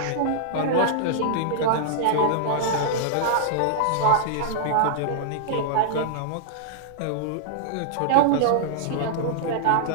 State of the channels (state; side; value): different; both; correlation -0.01